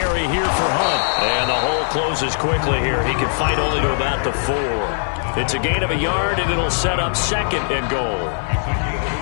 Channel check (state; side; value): silent; right; 63 dB below the other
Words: here for Hunt. And the hole closes quickly here. He can fight only to about the 4. It's a gain of a yard, and it'll set up 2nd and goal.